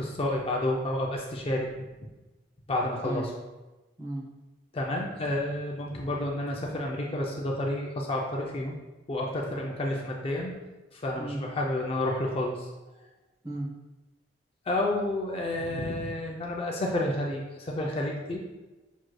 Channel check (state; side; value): normal; both; correlation 0.51